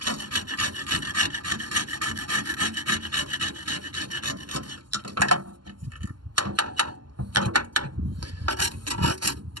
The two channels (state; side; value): late; left; 0.71 ms